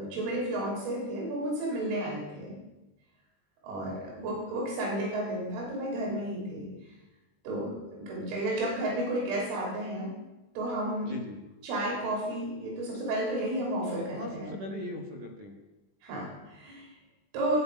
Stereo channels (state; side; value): late; left; 20 ms